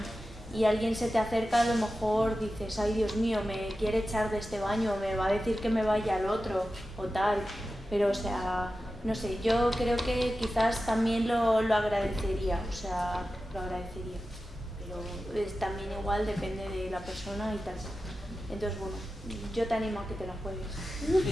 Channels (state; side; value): normal; both; correlation 0.93